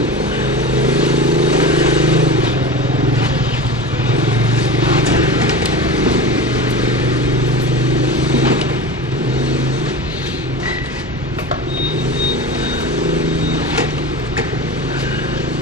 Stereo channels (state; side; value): normal; both; correlation 0.29